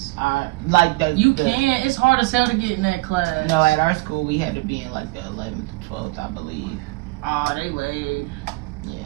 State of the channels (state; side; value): quieter; left; 23.2 dB